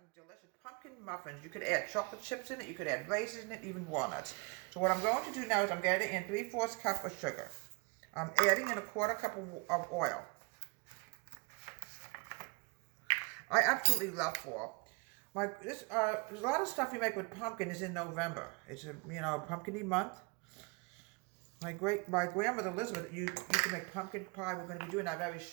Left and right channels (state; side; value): quieter; left; 29.8 dB